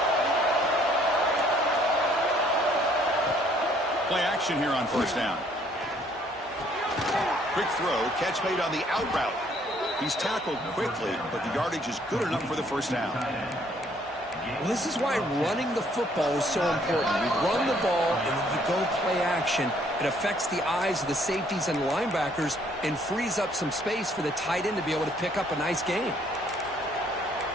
Play action here on first down. Quick throw, catch made on the out route. He's tackled quickly, but the yardage is good enough for the first down. Well, this is why running the football is so important. You run the ball, and then you go play action. It affects the eyes of the safeties and linebackers and frees up some space for the tight end to be able to pick up a nice gain.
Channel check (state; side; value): normal; both; correlation 0.64